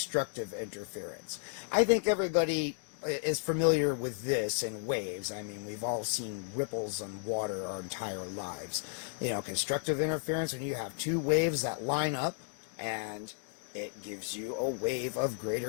interference. I think everybody is familiar with this in waves. I mean, we've all seen ripples on water our entire lives. You know, constructive interference, when you have two waves that line up, and it gives you a wave of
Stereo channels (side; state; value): right; silent; digital silence